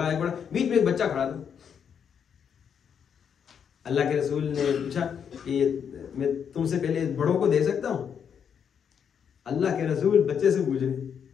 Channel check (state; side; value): quieter; right; 7.6 dB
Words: ایک بڑا، بیچ میں ایک بچہ کھڑا تھا. اللہ کے رسول نے پوچھا کہ میں تم سے پہلے بڑوں کو دے سکتا ہوں؟ اللہ کے رسول بچے سے پوچھ رہے.